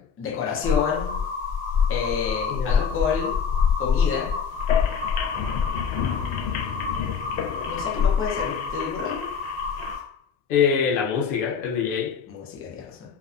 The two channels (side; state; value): right; quieter; 6.4 dB